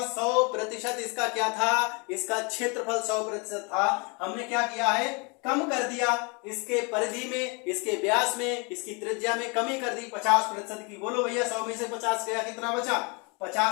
100% इसका क्या था, इसका क्षेत्रफल 100% था। हमने क्या किया है, कम कर दिया, इसके परिधि में, इसके व्यास में, इसकी त्रिज्या में कमी कर दी 50% की। बोलो भैया 100 में से 50 गया, कितना बचा,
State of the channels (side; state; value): right; quieter; 31.6 dB